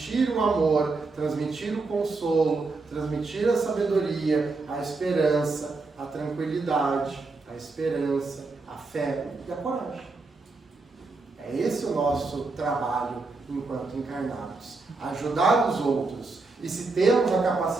o amor, transmitir o consolo, transmitir a sabedoria, a esperança, a tranquilidade, a esperança, a fé e a coragem. É esse o nosso trabalho enquanto encarnados. Ajudar os outros. E se temos a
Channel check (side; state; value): left; quieter; 3.7 dB